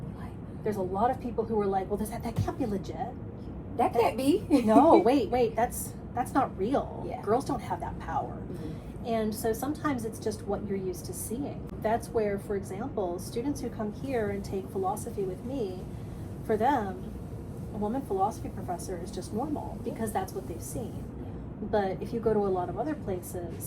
there's a lot of people who are like, well, that can't be legit. That can't be. No, wait, that's not real. Yeah. Girls don't have that power. And so sometimes it's just what you're used to seeing. That's where, for example, students who come here and take philosophy with me, for them, a woman philosophy professor is just normal because that's what they've seen. But if you go to a lot of other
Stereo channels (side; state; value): both; identical; correlation 1.00